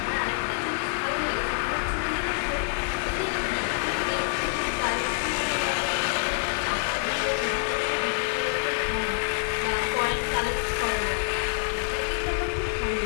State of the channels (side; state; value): right; quieter; 38.8 dB